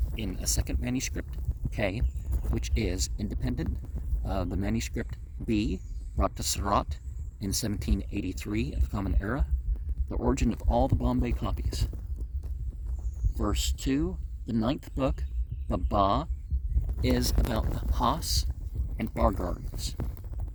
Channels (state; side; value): identical; both; correlation 1.00